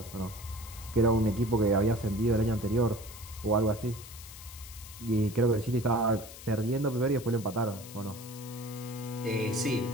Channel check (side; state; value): left; noise; hiss, 15 dB below the sound